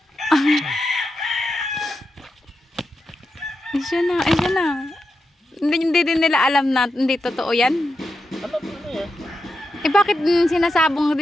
Ay, siya na, ay, siya na. Hindi din nila alam na hindi totoo yan. Alam mo na yan. Eh, bakit sinasabong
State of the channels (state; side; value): normal; both; correlation 0.87